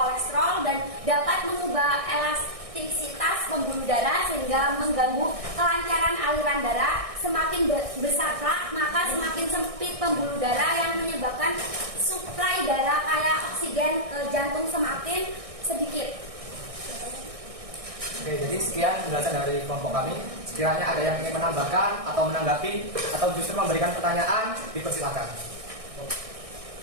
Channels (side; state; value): left; late; 1.6 ms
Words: dan dapat mengubah elastisitas pembuluh darah sehingga mengganggu kelancaran aliran darah. Semakin besar plak, maka semakin sempit pembuluh darah yang menyebabkan suplai darah kaya oksigen ke jantung semakin sedikit. Oke, jadi sekian penjelasan dari kelompok kami. Sekiranya ada yang ingin menambahkan atau menanggapi atau justru memberikan pertanyaan, dipersilakan.